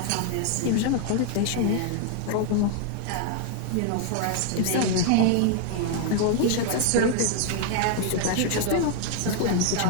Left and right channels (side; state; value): both; different; correlation 0.00